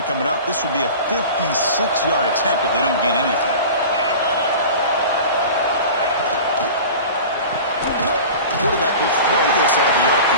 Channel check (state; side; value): inverted; both; correlation -0.36